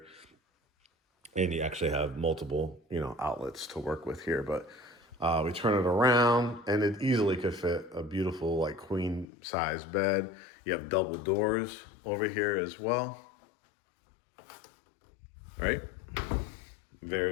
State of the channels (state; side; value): drops out; right; at 9.2 s